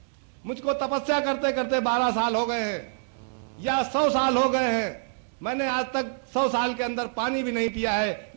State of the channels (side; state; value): left; silent; digital silence